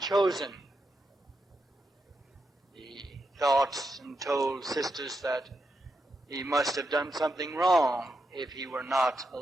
He thought and told Sistus that he must have done something wrong if he were not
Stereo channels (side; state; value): both; normal; correlation 0.85